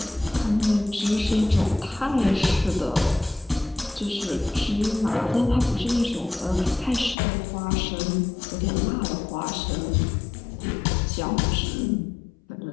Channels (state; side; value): drops out; right; at 7.2 s